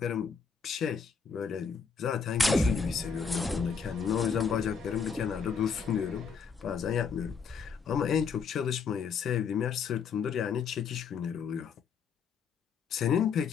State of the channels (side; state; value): right; quieter; 6.1 dB